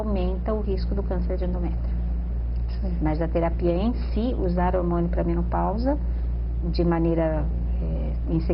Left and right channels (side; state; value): both; identical; correlation 1.00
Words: o risco do câncer de endométrio. Sim. Mas a terapia em si, usar hormônio para menopausa, de maneira, em